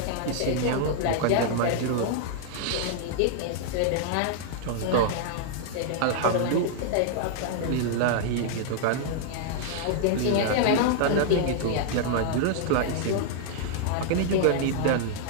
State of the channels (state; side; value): different; both; correlation -0.01